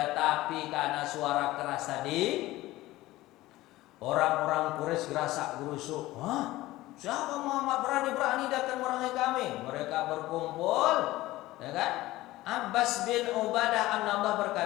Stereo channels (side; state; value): right; quieter; 17.5 dB